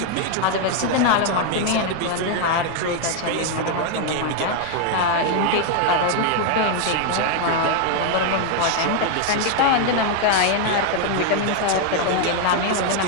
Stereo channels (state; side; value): different; both; correlation 0.01